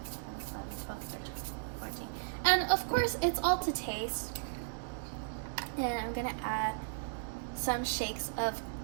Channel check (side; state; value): left; quieter; 35.8 dB